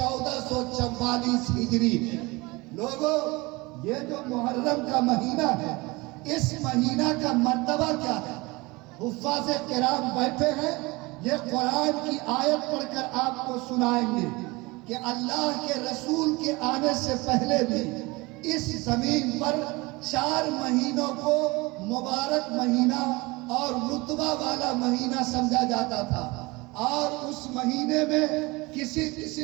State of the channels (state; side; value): quieter; left; 23.7 dB